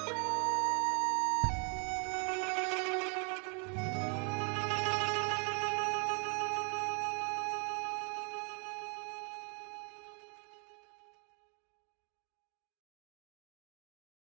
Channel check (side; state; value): left; quieter; 35.5 dB